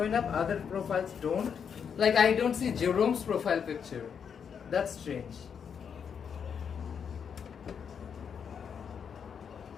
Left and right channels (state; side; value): quieter; right; 7.1 dB